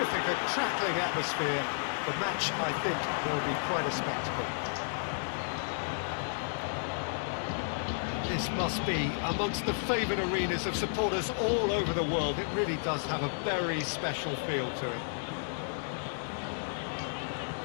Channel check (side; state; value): right; silent; digital silence